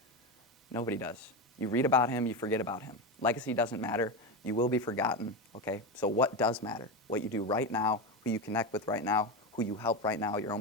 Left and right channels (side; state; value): both; normal; correlation 0.16